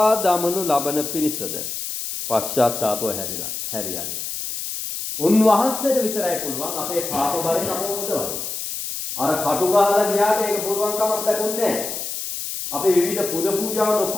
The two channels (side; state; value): left; noise; hiss, 5 dB below the sound